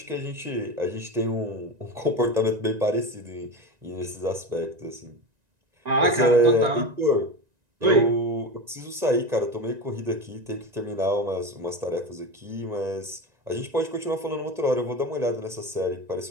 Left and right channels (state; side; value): late; left; 1.9 ms